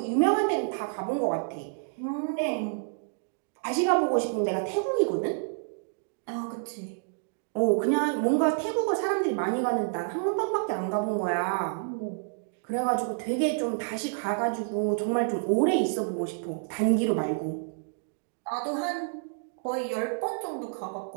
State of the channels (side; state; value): left; silent; digital silence